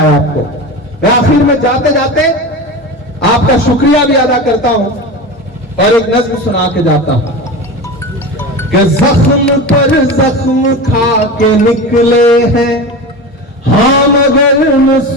आपको। मैं आखिर में जाते जाते आपका शुक्रिया भी अदा करता हूं और एक नज्म सुना के जाता हूं। कि जख्म पर जख्म खा के निकले हैं हाँ मगर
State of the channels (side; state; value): both; normal; correlation 0.27